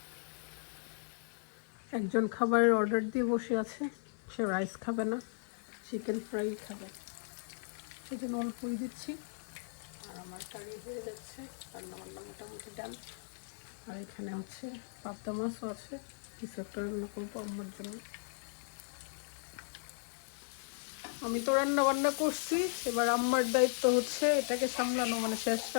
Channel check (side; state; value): right; silent; digital silence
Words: একজন খাবারের অর্ডার দিয়ে বসে আছে, সে রাইস খাবে না, চিকেন ফ্রাই খাবে, সেজন্য অল্পই দিচ্ছি। আর আমার কারি হয়ে যাচ্ছে, রান্নাবান্না মোটামুটি ডান। আর এখানে হচ্ছে পাবদা মাছও আছে, কিছু একটা রান্না করবো আমার জন্য। আমি তো রান্না বান্না করছি, এবার আম্মার দায়িত্ব হচ্ছে এটাকে সামলানো, মানে শেষ